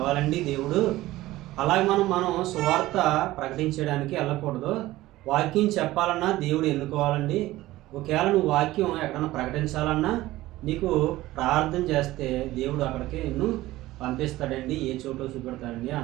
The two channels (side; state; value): left; quieter; 16.9 dB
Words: దేవుడు, అలాగే మనం సువార్త ప్రకటించడానికి వెళ్ళకూడదు. వాక్యం చెప్పాలన్నా దేవుడు ఎన్నుకోవాలండి. ఒకవేళ నువ్వు వాక్యం ఎక్కడన్నా ప్రకటించాలన్నా నీకు ప్రార్థన చేస్తే దేవుడు అక్కడికి నిన్ను పంపిస్తాడండి, ఏ చోటో చూపెడతాడండి